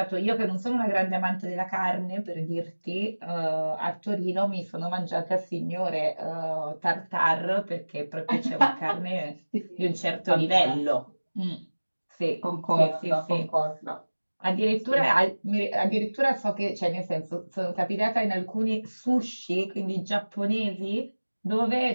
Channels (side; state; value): both; inverted; correlation -1.00